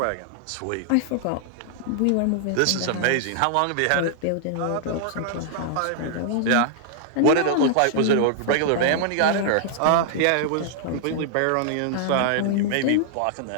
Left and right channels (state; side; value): different; both; correlation -0.01